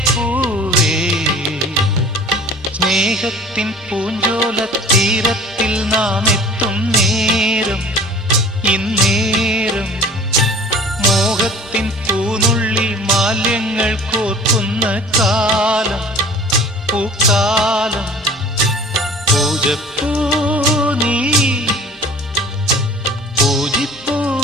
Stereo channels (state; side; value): normal; both; correlation 0.45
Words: പൂവേ, സ്നേഹത്തിൻ പൂഞ്ചോല തീരത്തിൽ നാം എത്തും നേരം ഇന്നേരം. മോഹത്തിൻ പൂനുള്ളി മാല്യങ്ങൾ കോർക്കുന്ന കാലം പൂക്കാലം. പൂജപ്പൂ നീ, പൂജിപ്പൂ